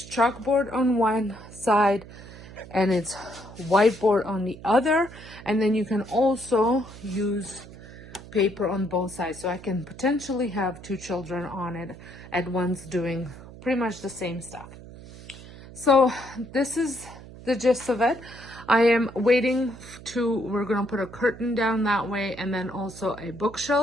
chalkboard on one side and it's whiteboard on the other, and then you can also use paper on both sides, so I can potentially have 2 children on it at once doing pretty much the same stuff. So this is the gist of it. I am waiting we're gonna put a curtain down that way, and then also a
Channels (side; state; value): right; noise; hum, 17 dB below the sound